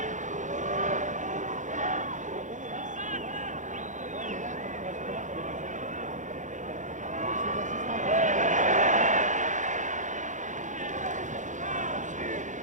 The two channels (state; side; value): late; left; 0.36 ms